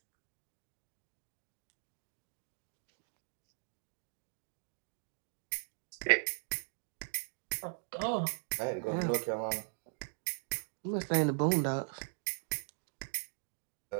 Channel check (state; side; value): silent; left; digital silence